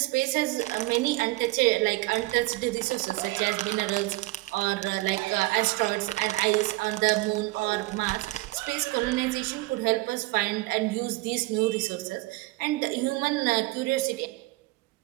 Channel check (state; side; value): quieter; left; 20.5 dB